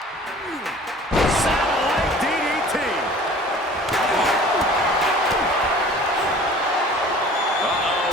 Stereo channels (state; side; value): normal; both; correlation 0.46